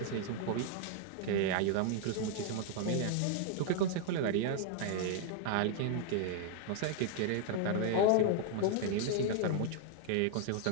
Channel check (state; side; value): different; both; correlation 0.00